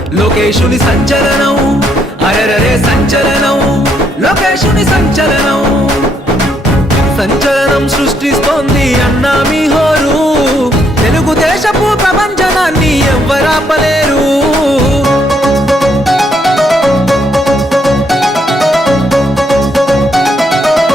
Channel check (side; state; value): both; normal; correlation 0.73